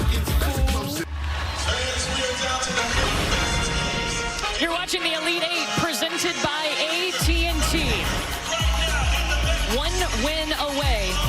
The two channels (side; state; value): both; identical; correlation 1.00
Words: You're watching the Elite Eight presented by AT&T. 1 win away